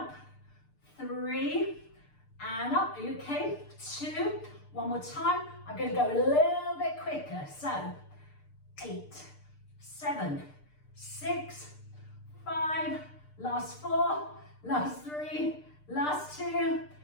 3 and up. Are you okay? 2. One more time. I'm going to go a little bit quicker. So 8, 7, 6, 5, last 4, last 3, last 2,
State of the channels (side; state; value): right; late; 6.7 ms